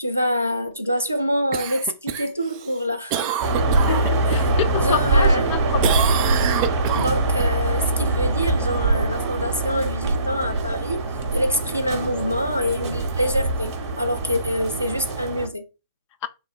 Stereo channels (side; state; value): both; inverted; correlation -0.59